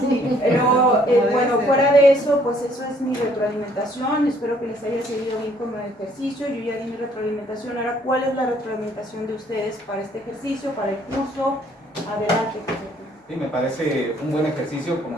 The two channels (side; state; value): both; normal; correlation 0.63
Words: pero bueno, fuera de eso, pues eso es mi retroalimentación. Espero que les haya servido bien como ejercicio. Yo ya di mi retroalimentación. Ahora, ¿cuál es la retroalimentación de ustedes para este ejercicio, para el curso? Adelante. Sí, me parece un buen ejercicio,